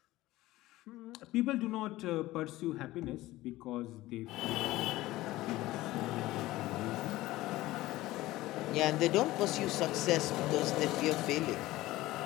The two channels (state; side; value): quieter; right; 17.4 dB